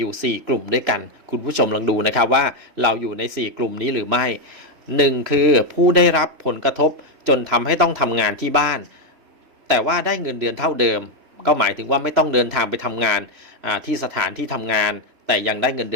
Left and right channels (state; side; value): late; left; 3.0 ms